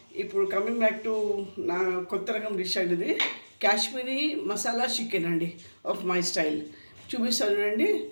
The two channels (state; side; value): inverted; both; correlation -1.00